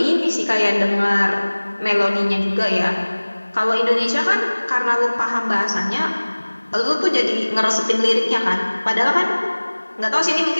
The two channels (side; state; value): both; inverted; correlation -1.00